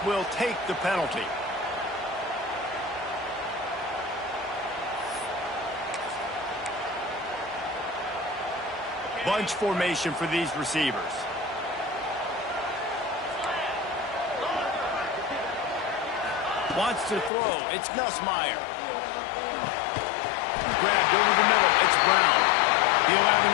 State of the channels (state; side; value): drops out; right; at 17.3 s